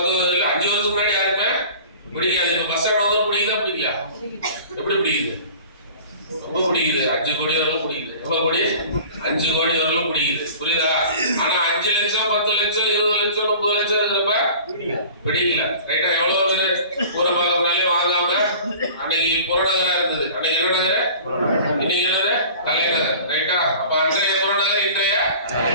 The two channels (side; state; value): both; inverted; correlation -0.44